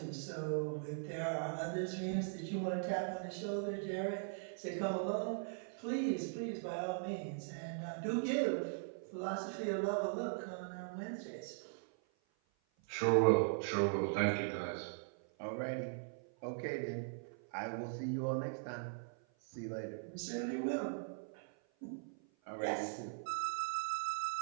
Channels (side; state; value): left; silent; 51 dB below the other